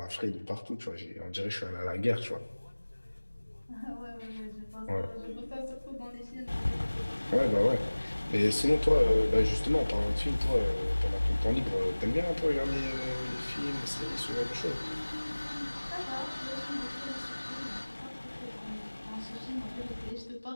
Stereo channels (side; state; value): both; inverted; correlation -1.00